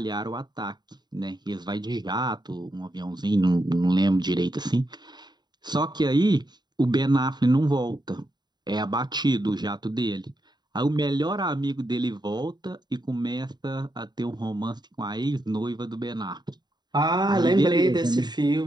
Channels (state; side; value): late; left; 0.21 ms